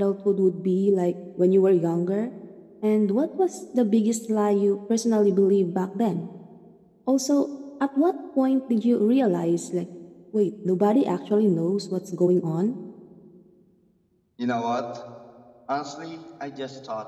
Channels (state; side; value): identical; both; correlation 1.00